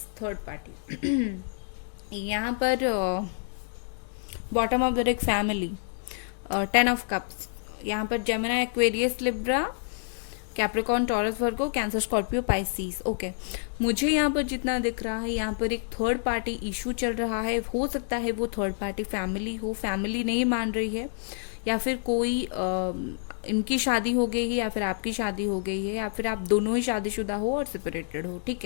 third party. यहाँ पर bottom of the deck family, 10 of cups. यहाँ पर Gemini, Aquarius, Libra, Capricorn, Taurus, Virgo, Cancer, Scorpio, Pisces. Okay, मुझे यहाँ पर जितना दिख रहा है, यहाँ पर एक थर्ड पार्टी इशू चल रहा है। हो सकता है वो थर्ड पार्टी फैमिली हो, फैमिली नहीं मान रही है, या फिर कोई इनकी शादी हो गई है, या फिर आपकी शादी हो गई है, या फिर आप दोनों ही शादीशुदा हो और सेपरेटेड हो। ठीक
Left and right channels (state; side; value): silent; right; digital silence